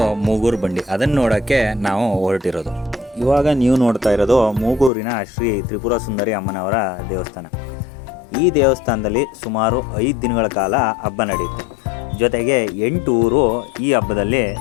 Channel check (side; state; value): right; drops out; at 4.9 s